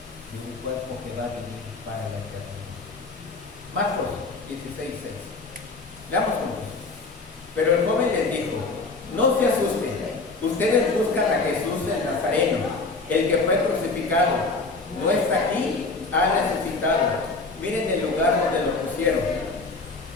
y un cuerpo que va a vivir para la eternidad. Marcos 16:6. Veamos cómo. Pero el joven les dijo: no se asusten, ustedes buscan a Jesús el Nazareno, el que fue crucificado. No está aquí, ha resucitado. Miren el lugar donde lo pusieron.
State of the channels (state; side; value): quieter; right; 3.7 dB